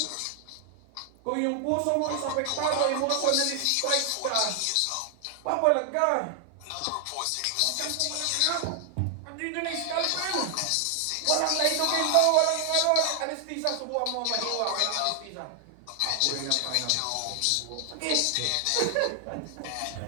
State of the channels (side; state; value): both; different; correlation 0.00